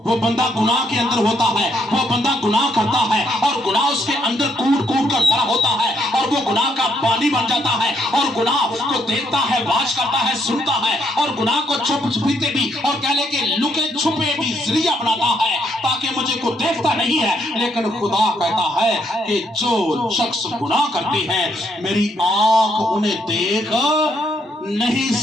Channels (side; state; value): both; normal; correlation 0.73